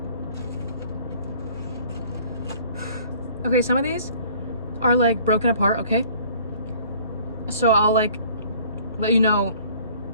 Okay, some of these are like broken apart, okay? So I'll like let you know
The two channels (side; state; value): both; inverted; correlation -0.53